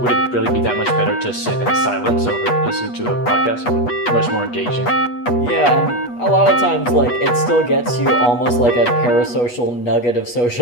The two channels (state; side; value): late; right; 8.3 ms